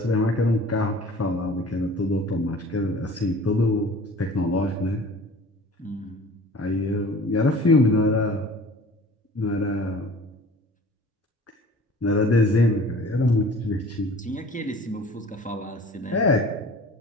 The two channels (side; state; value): both; normal; correlation 0.45